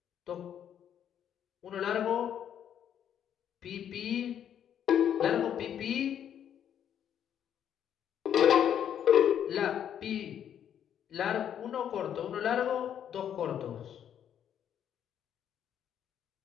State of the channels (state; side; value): quieter; right; 9.5 dB